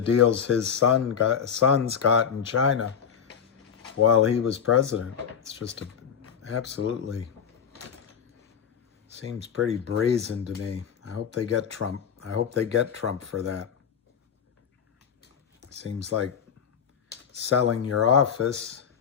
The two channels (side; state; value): right; quieter; 7.5 dB